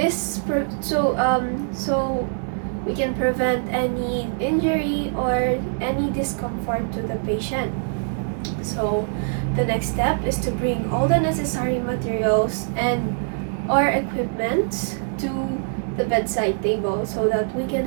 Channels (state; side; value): silent; left; digital silence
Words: So we can prevent any injury or any discomfort to the patient. So the next step is to bring all the necessary materials and or equipment to the bedside table so that we can